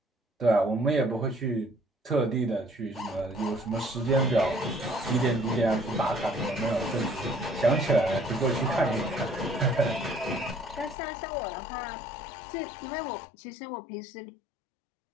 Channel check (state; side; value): drops out; right; at 11.0 s